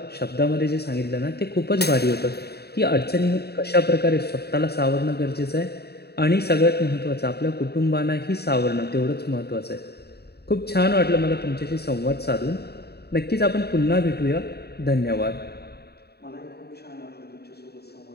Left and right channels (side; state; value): right; late; 0.47 ms